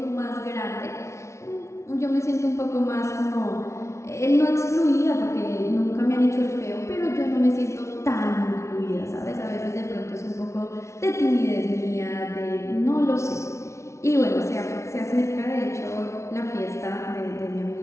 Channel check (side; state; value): right; late; 0.13 ms